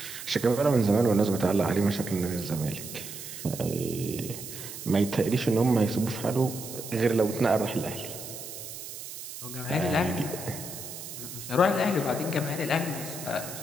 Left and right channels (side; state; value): right; noise; hiss, 10 dB below the sound